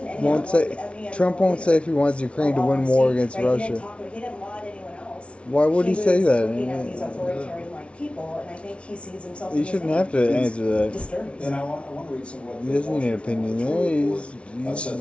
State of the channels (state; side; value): late; right; 0.060 ms